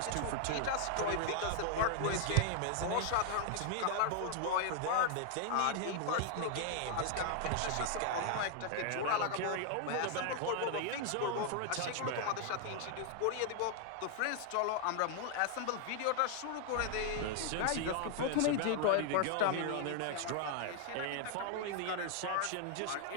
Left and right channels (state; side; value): different; both; correlation 0.00